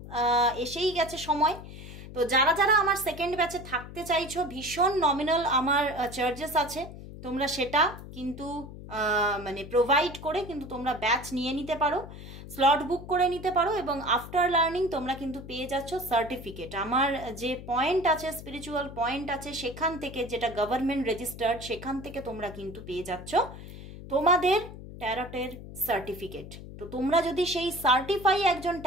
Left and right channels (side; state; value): left; noise; hum, 13 dB below the sound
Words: এসেই গেছে সময়। তো যারা যারা আমার সেকেন্ড ব্যাচে থাকতে চাইছো, ভীষণ নমিনাল আমার চার্জেস আছে, তোমরা সেটা কিন্তু মানে প্রোভাইড করে কিন্তু তোমরা ব্যাচ নিয়ে নিতে পারো, স্লট বুক করে নিতে পারো, এবং আফটার লার্নিং তোমরা কিন্তু পেয়ে যাচ্ছ সার্টিফিকেট। আমার যে পয়েন্ট আছে, স্পিরিচুয়াল পয়েন্ট আছে, সেখান থেকে, যেটা গভর্নমেন্ট রেজিস্টার্ড, সেখান থেকে তোমরা কিন্তু পেয়ে যাচ্ছ তোমাদের ট্যারটের সার্টিফিকেট। তো তোমরা যদি সেই সার্টিফাই একজন